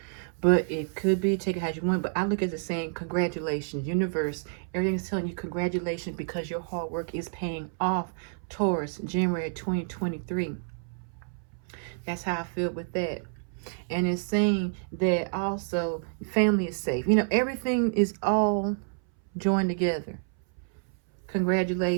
but it could be. Take it how you want. But I look at it saying, congratulations, universe. Everything's telling you congratulations because your hard work is paying off, Taurus, January 2023. That's how I feel with that. And it's saying that also family is safe. You know, everything is all joined together.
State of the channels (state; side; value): silent; left; 59 dB below the other